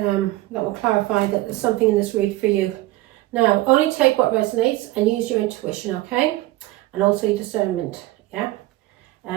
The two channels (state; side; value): quieter; left; 17.6 dB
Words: will clarify that there's something in this read for you. Now, only take what resonates and use your intuition, okay? And also your discernment, yeah?